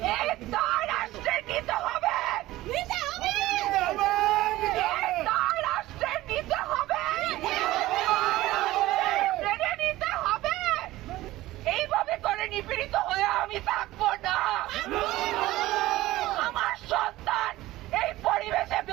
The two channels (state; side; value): quieter; left; 17.0 dB